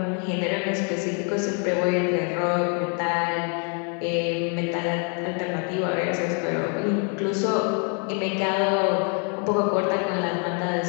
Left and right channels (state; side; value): quieter; right; 39.1 dB